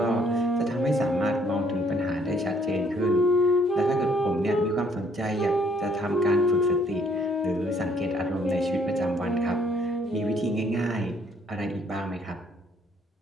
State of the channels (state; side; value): normal; both; correlation 0.65